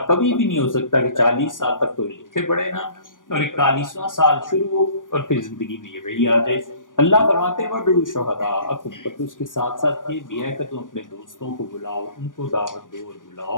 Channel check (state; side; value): late; right; 0.88 ms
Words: کبھی بھی نہیں ہو سکتا کہ 40 سال تک تو لکھے پڑھے نا، اور 41واں سال شروع ہو اور پھر زندگی میں یہ وہی آ جائے۔ اللہ فرماتے وَادْعُوا شُهَدَاءَکُم، پر اس کے ساتھ ساتھ یہ بھی ہے کہ تم اپنے دوستوں کو بلاؤ، ان کو دعوت دو اور